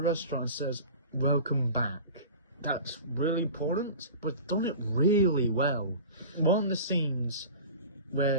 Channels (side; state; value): both; inverted; correlation -0.36